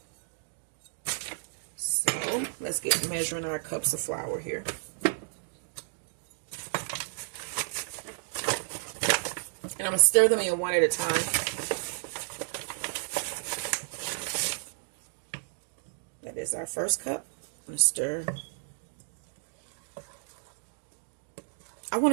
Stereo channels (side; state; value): left; silent; digital silence